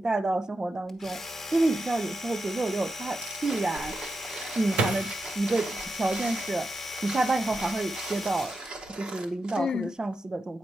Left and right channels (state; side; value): normal; both; correlation 0.88